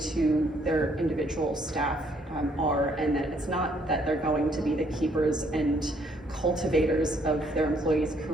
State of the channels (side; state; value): both; normal; correlation 0.67